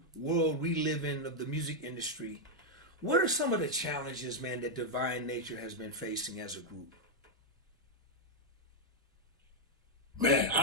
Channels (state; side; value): normal; both; correlation -0.01